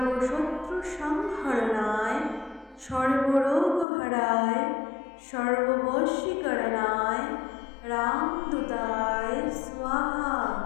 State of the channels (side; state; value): right; drops out; at 3.9 s